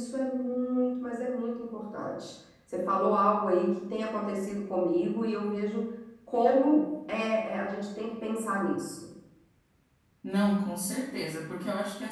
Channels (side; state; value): both; identical; correlation 1.00